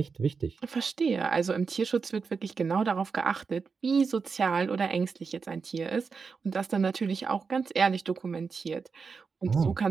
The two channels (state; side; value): quieter; left; 5.2 dB